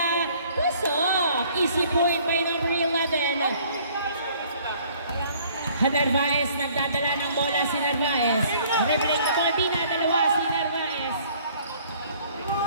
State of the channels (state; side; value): inverted; both; correlation -0.57